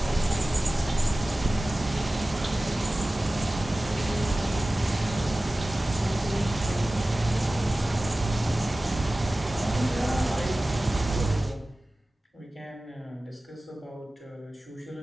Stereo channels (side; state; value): both; normal; correlation 0.97